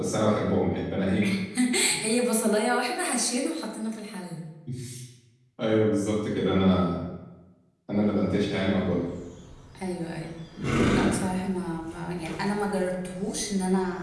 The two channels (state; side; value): identical; both; correlation 1.00